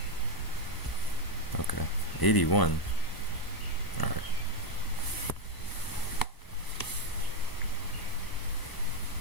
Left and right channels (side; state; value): right; late; 1.0 ms